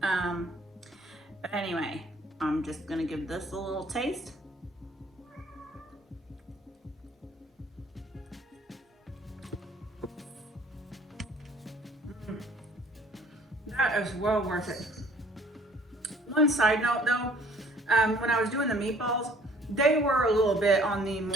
Anyway, I'm just gonna give this a little taste. That is well worth it. One side note though, when I was doing the meatballs, they were a little bit on the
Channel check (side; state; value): both; normal; correlation 0.56